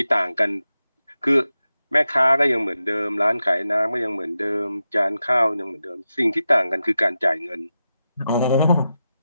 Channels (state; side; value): inverted; both; correlation -0.90